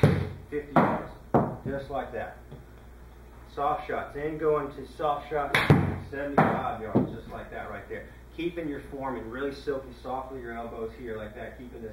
50 yards, just like that. Soft shots, then going to soft shots, 75 yards, just like that right there. Keeping your form and really silky, soft with your elbows here like that, keeping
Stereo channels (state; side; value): identical; both; correlation 1.00